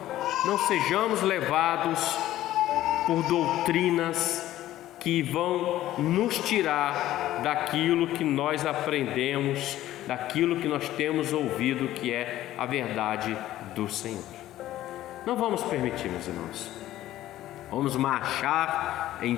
não sejamos levados por doutrinas que vão nos tirar daquilo que nós aprendemos, daquilo que nós temos ouvido, que é a verdade do Senhor. Não vamos permitir, meus irmãos. Vamos marchar em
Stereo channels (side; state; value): right; quieter; 14.1 dB